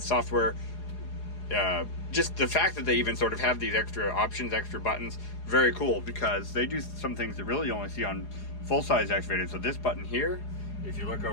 software. Just the fact that they even sort of have these extra options, extra buttons, very cool, because they do some things that really you only see on full-size excavators. So this button here, if you look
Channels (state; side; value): late; right; 4.8 ms